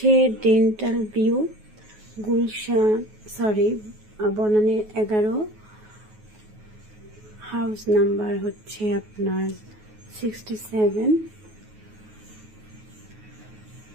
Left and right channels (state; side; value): late; left; 9.4 ms